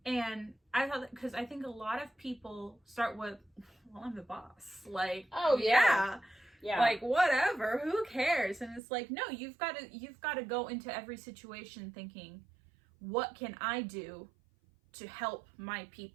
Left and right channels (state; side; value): drops out; left; at 8.8 s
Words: Yeah. And I thought, because I think a lot of people start with, well, I'm the boss. Like, oh yeah. Like, whatever, who cares? And it's like, no, you've got to go into every situation thinking, what can I do to help my